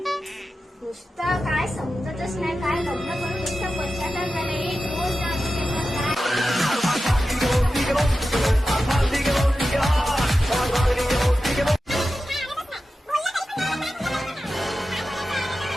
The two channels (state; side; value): normal; both; correlation 0.92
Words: नुसतं काय समजतच नाही. काय लग्न करून नुसतं पश्चाताप झालं. एक रोज नाही आणू शकत.